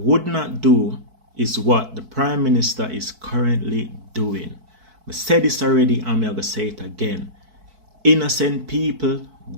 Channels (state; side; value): late; left; 4.6 ms